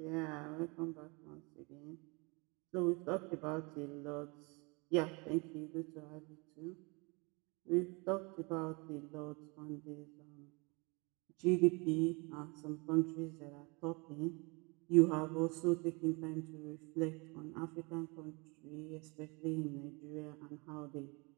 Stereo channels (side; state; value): left; quieter; 29.2 dB